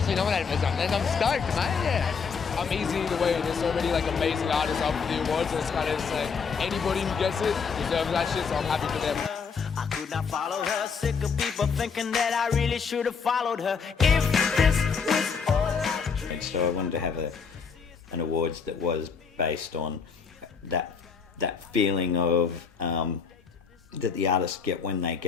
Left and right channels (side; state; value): right; quieter; 5.8 dB